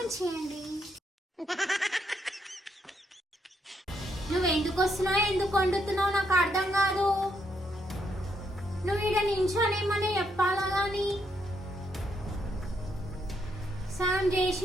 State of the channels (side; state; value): both; normal; correlation 0.76